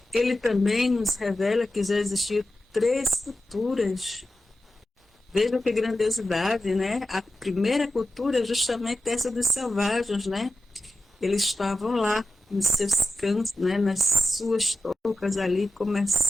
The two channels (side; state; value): both; normal; correlation 0.92